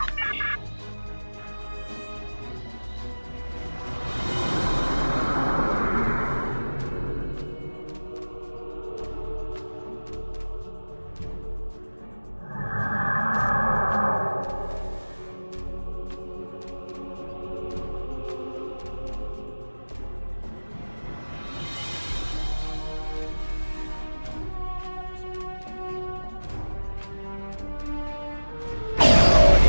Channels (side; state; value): both; inverted; correlation -1.00